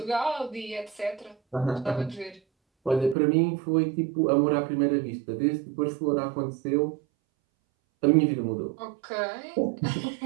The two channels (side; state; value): left; drops out; at 3.2 s